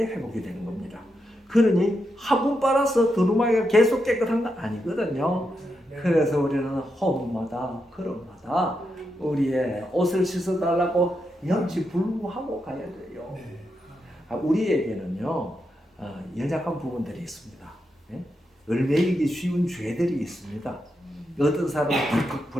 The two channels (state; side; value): normal; both; correlation 0.84